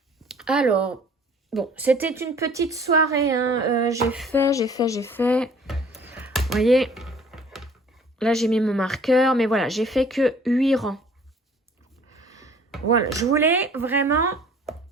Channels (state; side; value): normal; both; correlation 0.52